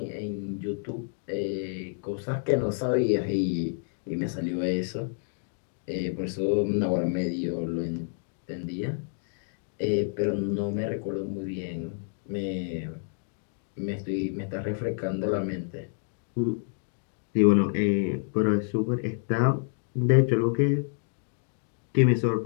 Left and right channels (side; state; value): right; silent; 59 dB below the other